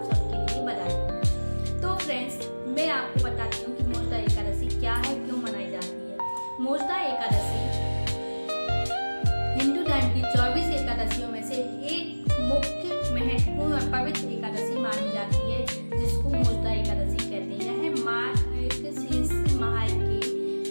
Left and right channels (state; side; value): inverted; both; correlation -1.00